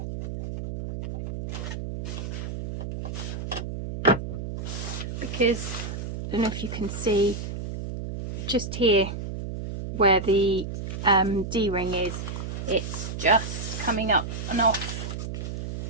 Because I don't know if you can see just here where the D-ring is, it's just coming up and off.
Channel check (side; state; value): right; noise; hum, 6 dB below the sound